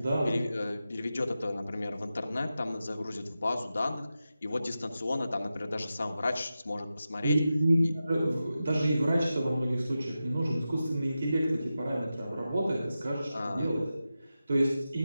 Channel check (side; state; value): both; inverted; correlation -0.92